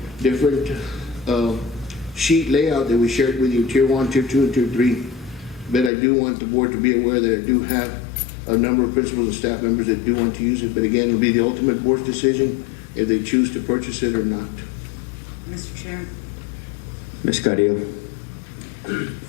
different sheet layout that we shared with you, Tier 1, Tier 2, and Tier 3. But I do want the board to be aware that I do have a number of principals and staff members that do want to use it. But again, it'll be the ultimate board's decision if they choose to purchase it or not. Mr. Chair, Ms. Carrillo?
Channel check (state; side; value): drops out; right; at 5.9 s